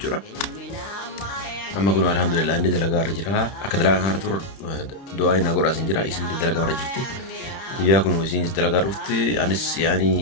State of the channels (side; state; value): right; late; 31 ms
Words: أما كنا الحمد لله عندي دلقة رجرها أكدلا هارتور دعاء نقول أسنج جرا اسم دلقة رجرتي وياكم وسين دلقة رفتي أنس